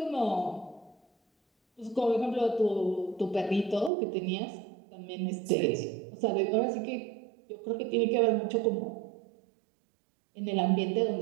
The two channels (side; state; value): left; drops out; at 3.9 s